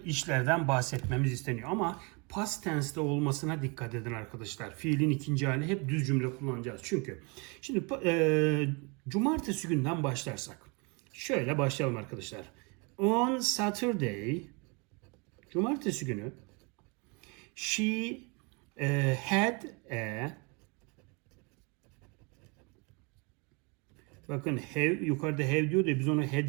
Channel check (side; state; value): left; quieter; 30.8 dB